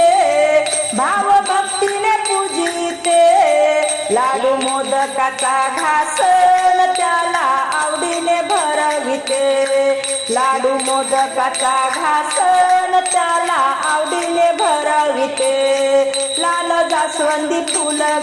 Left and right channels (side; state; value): both; identical; correlation 1.00